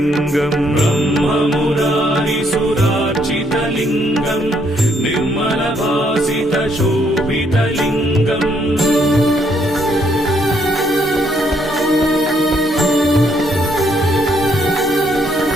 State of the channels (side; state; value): both; normal; correlation 0.71